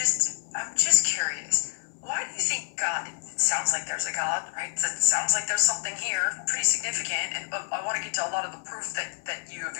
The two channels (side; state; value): right; silent; 59 dB below the other